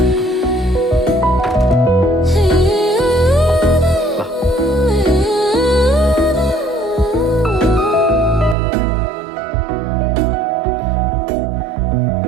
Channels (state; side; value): drops out; left; at 8.6 s